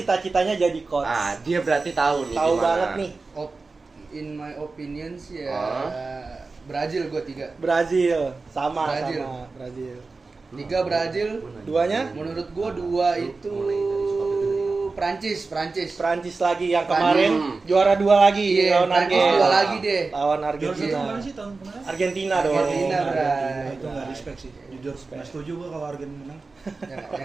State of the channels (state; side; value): quieter; left; 3.9 dB